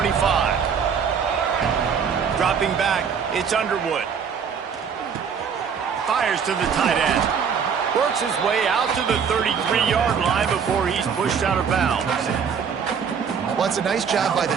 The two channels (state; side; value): quieter; left; 6.8 dB